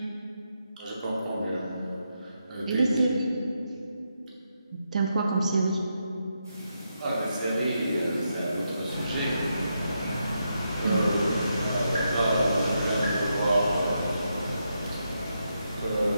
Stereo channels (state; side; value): inverted; both; correlation -0.83